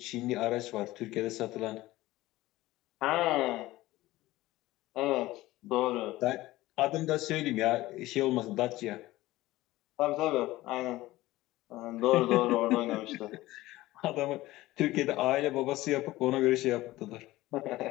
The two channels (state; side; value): quieter; right; 17.6 dB